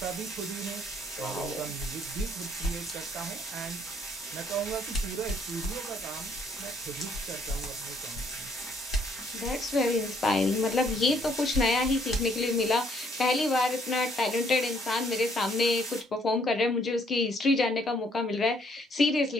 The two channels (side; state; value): both; normal; correlation 0.66